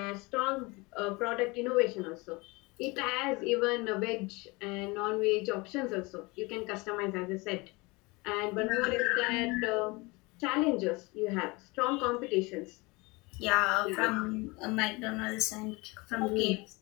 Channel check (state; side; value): quieter; right; 25.2 dB